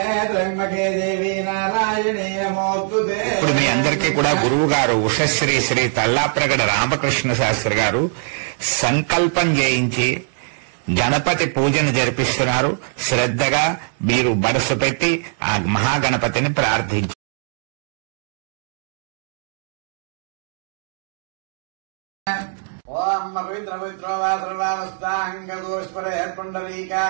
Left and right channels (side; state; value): left; silent; 65 dB below the other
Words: త్ర్యంబకే దేవీ నారాయణే నమోస్తుతే. ఇప్పుడు మీ అందరికీ కూడా గురువు గారు ఉషశ్రీ శ్రీ తల్లాప్రగడ రామకృష్ణ శాస్త్రి గారు సంకల్పం చేయించి గణపతి పూజను జరిపిస్తున్నారు. శ్రద్ధగా మీరు మనసు పెట్టి ఆ మహాగణపతిని ప్రార్థించారు. ఓం పవిత్ర పవిత్రోవాసర్వావస్థాంగోస్పరే